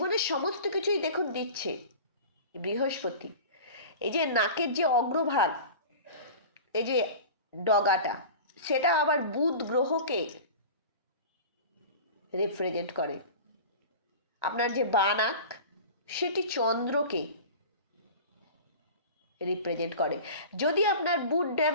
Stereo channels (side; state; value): both; inverted; correlation -0.36